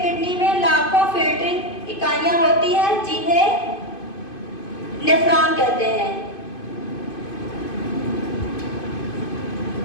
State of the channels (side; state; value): right; late; 2.5 ms